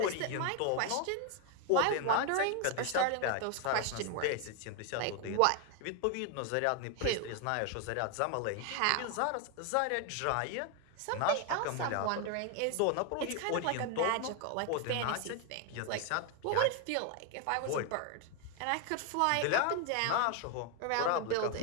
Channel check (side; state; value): both; different; correlation 0.01